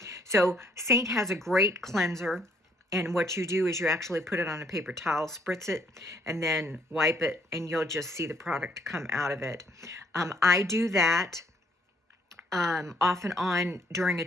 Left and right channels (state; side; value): normal; both; correlation 0.66